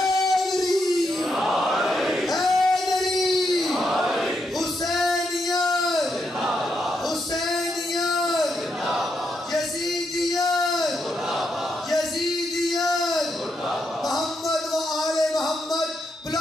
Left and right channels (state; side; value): normal; both; correlation 0.81